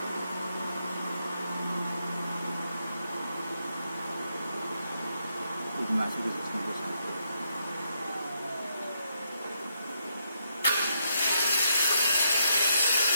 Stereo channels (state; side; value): inverted; both; correlation -0.77